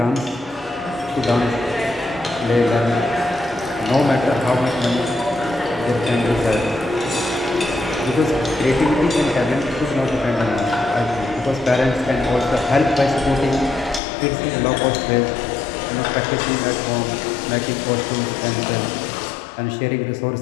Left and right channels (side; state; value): right; drops out; at 14.0 s